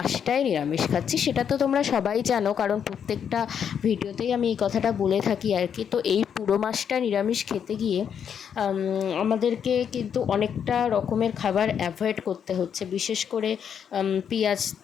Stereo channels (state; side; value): quieter; right; 8.0 dB